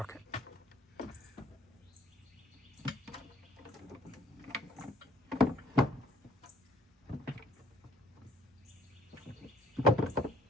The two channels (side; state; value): both; normal; correlation 0.59